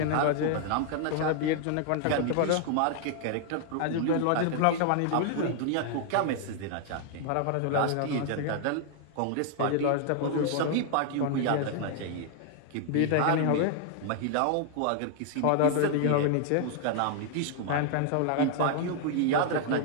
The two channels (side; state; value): both; different; correlation 0.00